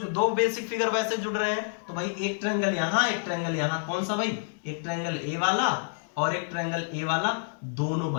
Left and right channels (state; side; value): silent; right; digital silence